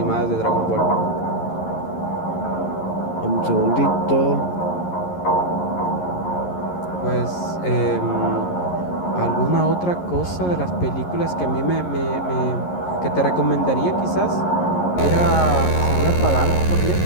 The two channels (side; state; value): right; late; 11 ms